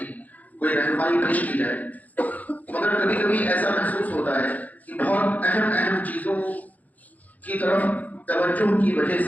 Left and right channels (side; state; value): right; late; 0.079 ms